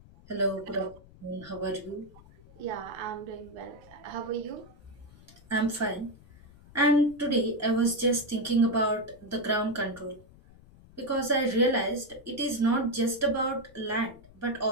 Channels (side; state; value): left; noise; rumble, 23 dB below the sound